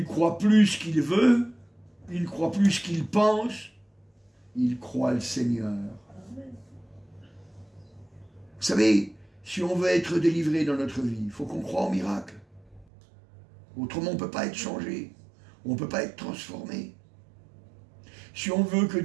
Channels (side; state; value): left; drops out; at 12.9 s